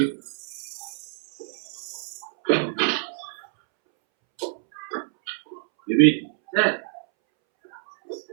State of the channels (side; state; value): left; silent; 61 dB below the other